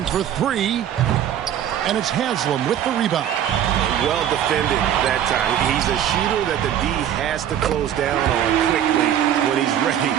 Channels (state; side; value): quieter; left; 10.2 dB